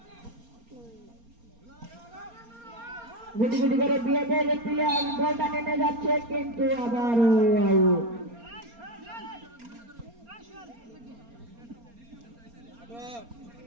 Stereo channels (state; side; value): late; left; 4.3 ms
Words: গুটি গুটি করে বিয়েদের প্লেয়ার বল টানিয়ে নিয়ে যাচ্ছে, কিন্তু আবারও আউট।